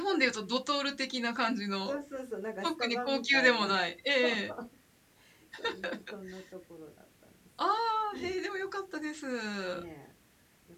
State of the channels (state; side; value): identical; both; correlation 1.00